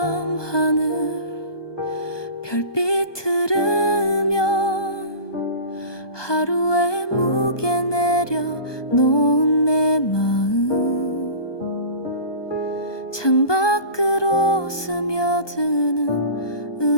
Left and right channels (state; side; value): late; right; 1.2 ms